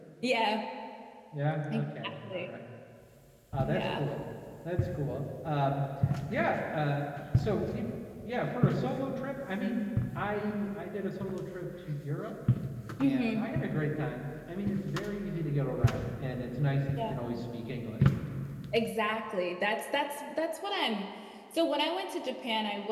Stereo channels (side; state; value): both; identical; correlation 1.00